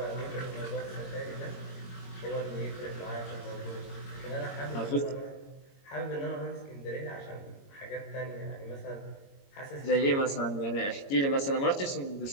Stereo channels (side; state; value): right; late; 22 ms